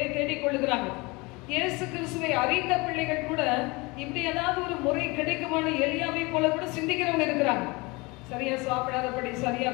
தேடிக்கொள்ளுகிறாங்க. இயேசு கிறிஸ்துவை அறிந்த பிள்ளைகள் கூட இப்படி ஏதாவது ஒரு முறை கிடைக்குமான எலியாவை போல கூட சிந்திக்கிறவங்க இருக்கிறாங்க. சரியா சாப்பிடாதபடி, சரியா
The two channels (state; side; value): quieter; right; 25.3 dB